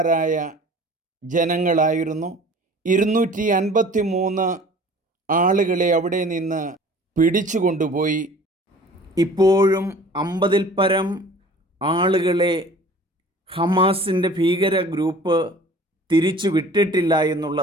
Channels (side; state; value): both; normal; correlation 0.46